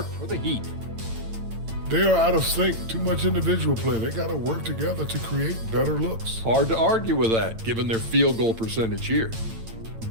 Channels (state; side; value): late; left; 8.9 ms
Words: for the Heat. They are out of sync. Too much individual play. They got to work together to create better looks. Hard to argue with that, given their field goal percentage here.